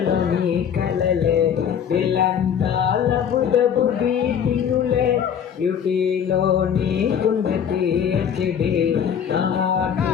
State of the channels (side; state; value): right; quieter; 8.2 dB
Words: నీ కలలే దిలంతా లబు డబు బీటింగులే బ్యూటీలో నీకుంది పిహెచ్డి నా